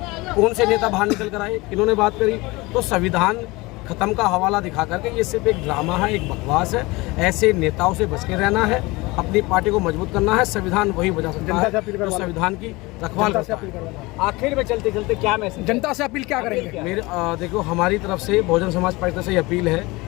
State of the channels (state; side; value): quieter; right; 22.8 dB